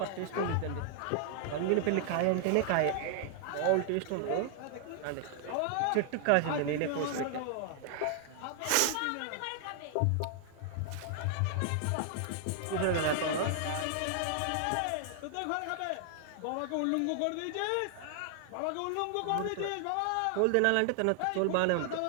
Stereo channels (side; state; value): both; different; correlation 0.00